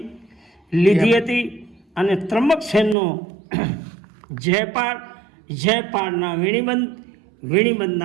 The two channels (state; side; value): drops out; left; at 3.0 s